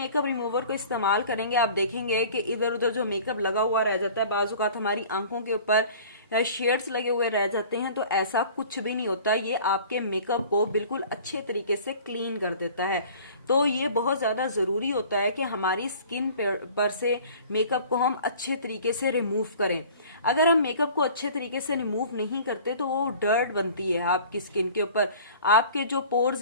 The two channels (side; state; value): both; inverted; correlation -0.46